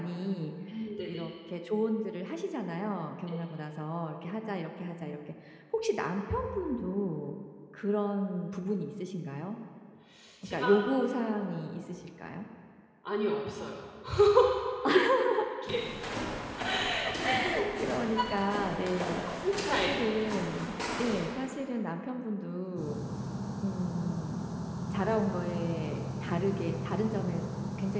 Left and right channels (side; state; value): both; identical; correlation 1.00